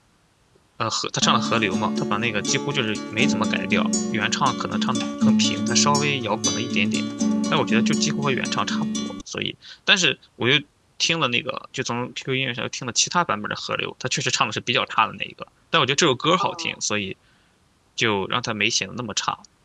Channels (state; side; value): identical; both; correlation 1.00